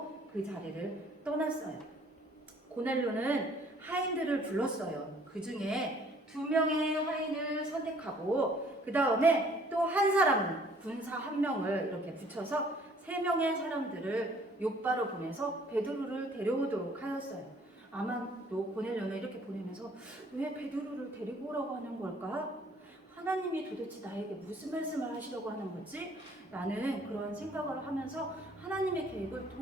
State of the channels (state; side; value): normal; both; correlation 0.58